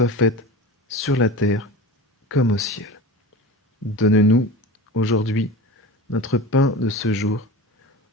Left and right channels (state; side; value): normal; both; correlation 0.32